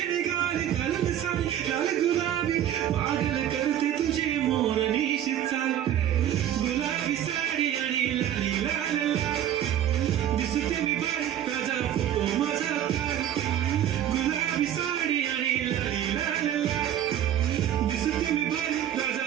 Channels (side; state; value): left; quieter; 10.8 dB